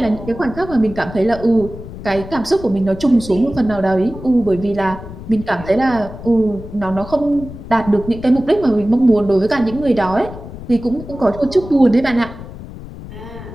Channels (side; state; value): left; noise; rumble, 13 dB below the sound